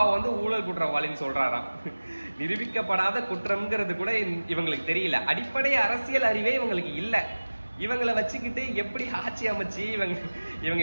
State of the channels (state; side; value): inverted; both; correlation -1.00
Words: வந்து ஊழல் குற்றவாளின்னு சொல்றாராம். நிரூபிக்கப்படாத குற்றம்ங்கிறது கூட இவங்களுக்கு தெரியல. அடிப்படை அரசியல் அறிவே இவங்களுக்கு இல்ல. இவங்களை வச்சுக்கிட்டு எப்படி ஆட்சி அமைச்சு இவங்க